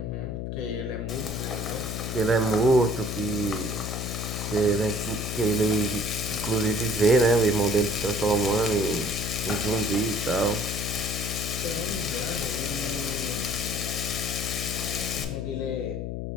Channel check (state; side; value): noise; left; hum, 4 dB below the sound